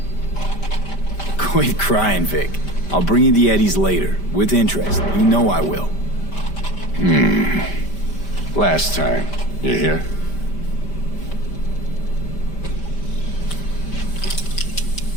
Quit crying, Vic. I'll bring you the Eddies later, with interest. You know I will. Last time. You hear?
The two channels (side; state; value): right; late; 5.1 ms